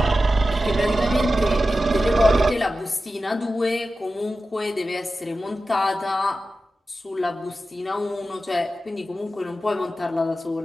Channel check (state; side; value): normal; both; correlation 0.93